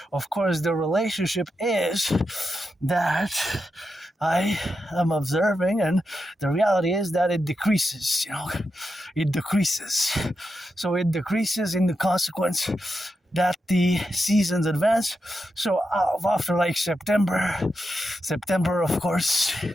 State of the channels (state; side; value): normal; both; correlation 0.87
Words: of course the relationship is that I am observing, and the reality is that it decreases, it decreases. So it decreases in the consequence that the seasons advance. So after like September, of course,